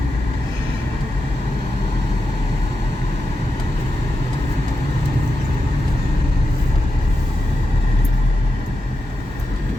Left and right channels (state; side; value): normal; both; correlation 0.88